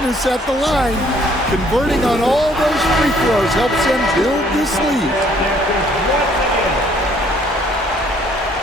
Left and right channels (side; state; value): both; normal; correlation 0.62